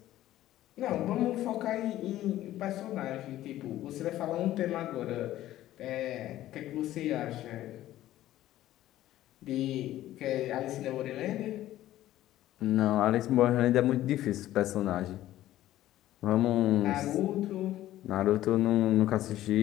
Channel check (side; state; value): right; quieter; 14.1 dB